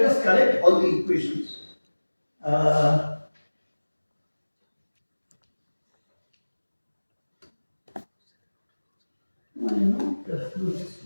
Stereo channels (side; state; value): both; inverted; correlation -1.00